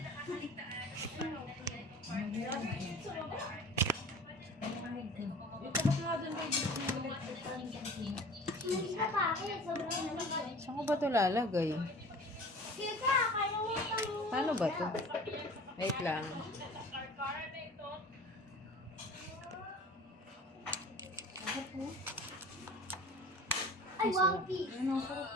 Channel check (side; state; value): both; normal; correlation 0.42